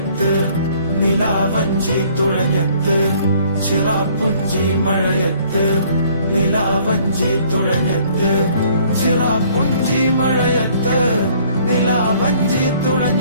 നിലാവഞ്ചി തുഴഞ്ഞത്ത് ചിറാപ്പുഞ്ചി മഴയത്ത് നിലാവഞ്ചി തുഴഞ്ഞത്ത് ചിറാപ്പുഞ്ചി മഴയത്ത് നിലാവഞ്ചി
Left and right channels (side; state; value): both; inverted; correlation -0.59